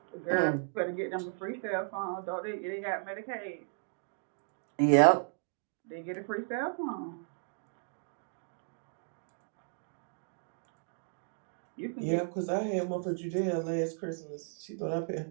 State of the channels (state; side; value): silent; left; digital silence